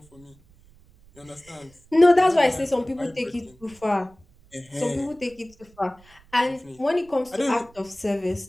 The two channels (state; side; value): noise; right; rumble, 28 dB below the sound